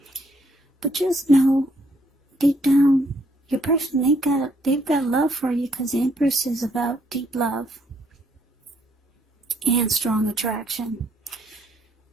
But just know, deep down, your person, they've got love for you, because the Empress is about deep love and strong attraction.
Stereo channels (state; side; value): normal; both; correlation 0.70